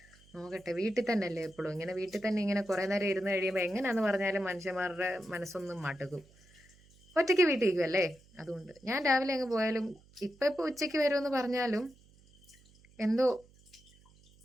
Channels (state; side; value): noise; right; hum, 28 dB below the sound